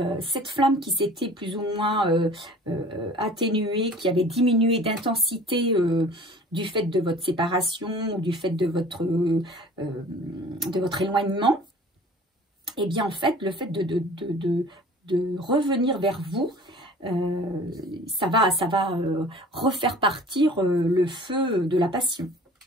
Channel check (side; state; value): both; normal; correlation 0.46